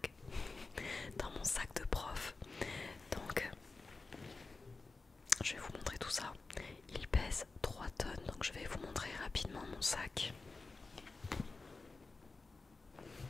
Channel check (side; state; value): right; quieter; 3.8 dB